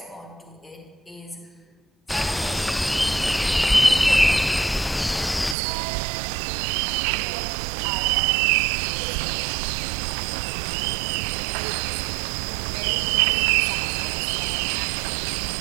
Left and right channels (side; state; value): left; drops out; at 5.6 s